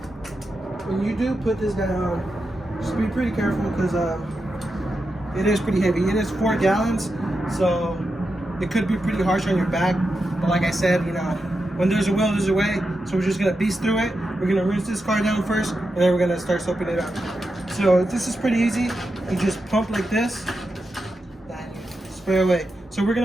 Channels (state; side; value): normal; both; correlation 0.88